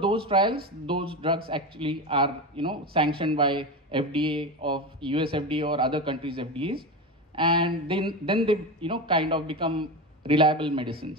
trials, those drugs actually are sanctioned by FDA of US FDA or other countries' FDAs, and then they kind of become reliable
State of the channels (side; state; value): both; normal; correlation 0.20